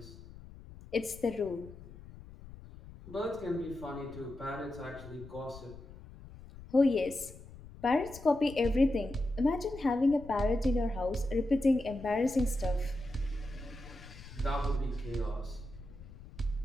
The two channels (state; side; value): noise; left; rumble, 16 dB below the sound